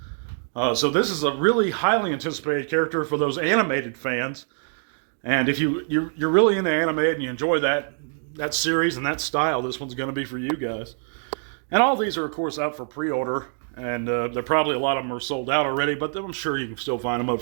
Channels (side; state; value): left; silent; 62 dB below the other